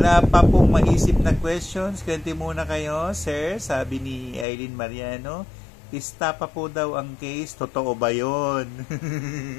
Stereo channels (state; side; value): drops out; right; at 4.5 s